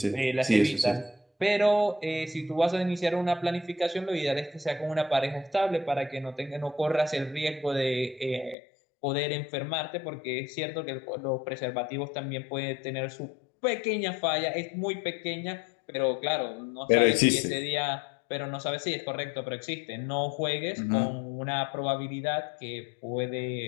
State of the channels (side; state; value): right; drops out; at 8.6 s